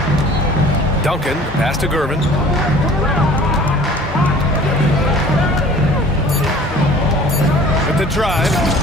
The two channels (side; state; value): both; normal; correlation 0.48